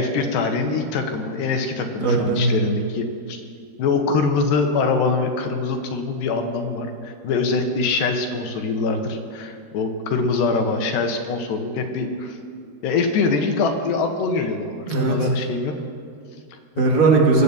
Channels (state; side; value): late; right; 14 ms